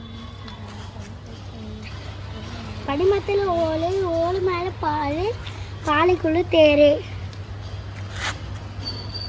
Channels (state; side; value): identical; both; correlation 1.00